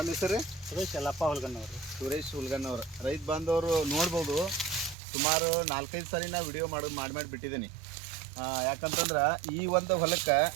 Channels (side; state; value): left; drops out; at 5.0 s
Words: ಹೆಸರು? ಸುರೇಶ್ ಯಲ್ಲಪ್ಪ ಹುಲ್ಗನ್ನವರು. ಸುರೇಶ್ ಹುಲ್ಗನ್ನವರು. ರೈತ ಬಾಂಧವರು ನೋಡ್ಬೋದು, ಸುಮಾರು 4-5 ಸಾರಿ ನಾವು ವಿಡಿಯೋ ಮಾಡಿ ಬಿಟ್ಟಿದ್ದೀನಿ. ಯಾಕಂತಂದ್ರೆ ಈ ಒಂದು ಹೊಲಕ್ಕೆ